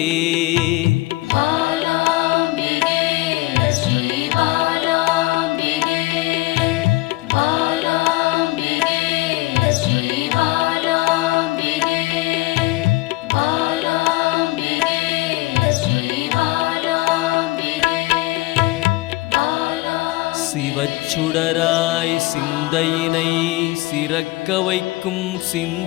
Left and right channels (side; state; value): right; quieter; 19.9 dB